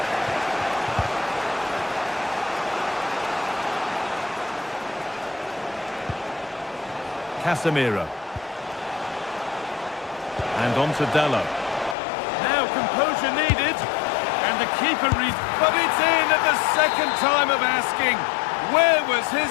Casemiro. And on to Dallo. Now composure needed. And the keeper reads, but it's in at the second time of asking. Where was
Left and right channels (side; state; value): right; drops out; at 12.0 s